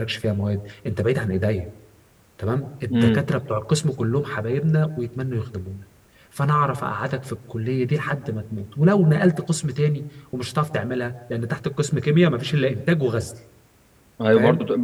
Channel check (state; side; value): identical; both; correlation 1.00